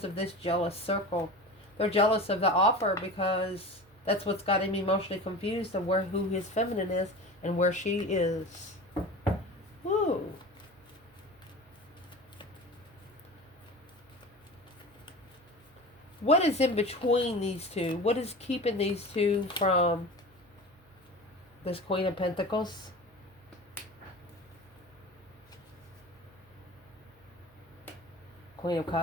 of this jealous circle. They're jealous of the offer because that's what's got him emotionally confused of who his feminine is and where she is. Woo. What is in between these two? What is keeping these two from this Queen of Pentacles? Queen of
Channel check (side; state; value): right; noise; hum, 29 dB below the sound